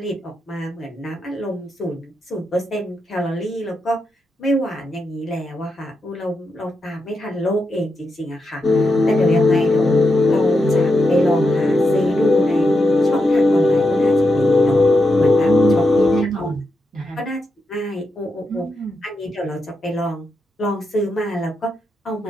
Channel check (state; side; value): normal; both; correlation 0.85